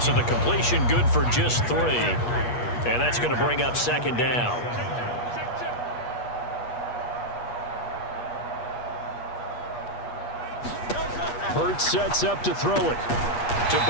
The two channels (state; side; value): late; right; 8.4 ms